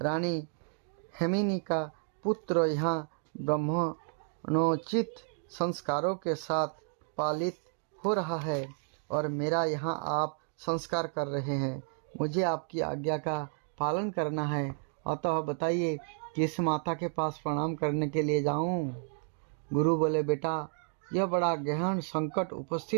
हेमिनी का पुत्र यहाँ ब्राह्मणोचित संस्कारों के साथ पालित हो रहा है और मेरा यहाँ आप संस्कार कर रहे हैं। मुझे आपकी आज्ञा का पालन करना है, अतः बताइए किस माता के पास प्रणाम करने के लिए जाऊँ। गुरु बोले, बेटा यह बड़ा गहन संकट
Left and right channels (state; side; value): silent; left; 57 dB below the other